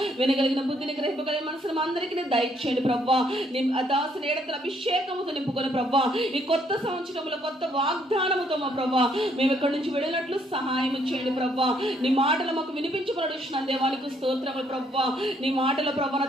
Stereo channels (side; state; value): both; normal; correlation 0.68